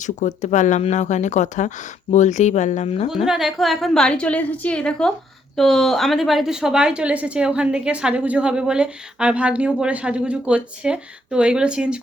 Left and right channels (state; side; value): normal; both; correlation 0.71